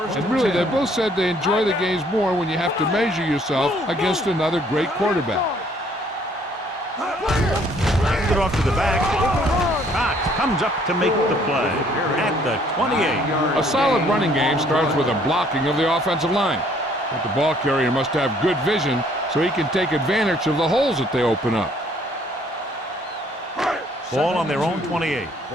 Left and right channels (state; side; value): normal; both; correlation 0.62